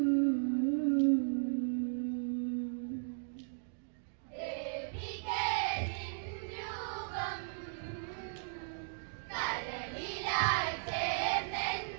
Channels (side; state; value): left; silent; digital silence